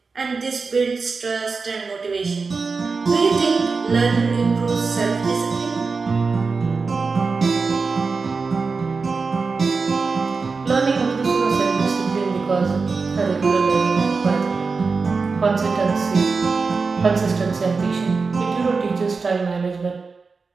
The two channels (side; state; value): left; quieter; 4.5 dB